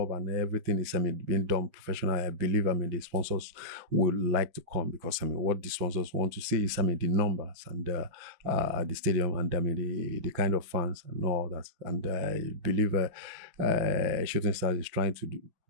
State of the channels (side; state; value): left; late; 6.2 ms